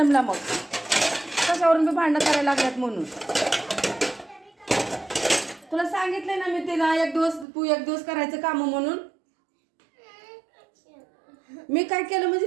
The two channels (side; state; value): left; drops out; at 7.5 s